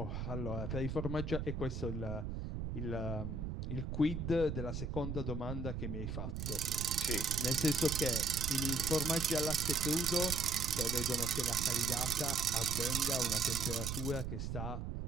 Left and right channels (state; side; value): noise; right; rumble, 4 dB below the sound